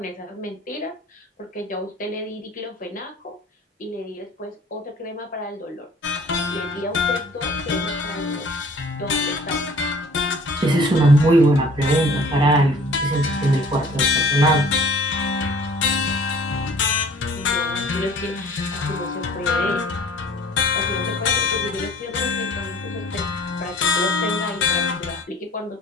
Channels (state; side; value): normal; both; correlation 0.50